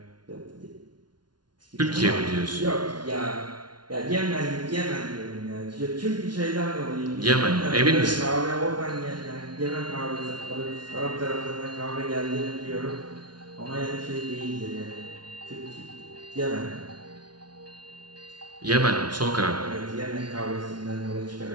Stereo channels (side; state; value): left; late; 0.70 ms